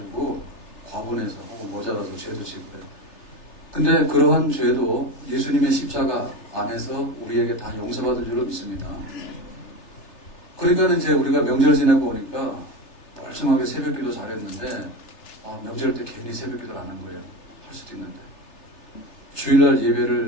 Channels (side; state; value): right; late; 3.3 ms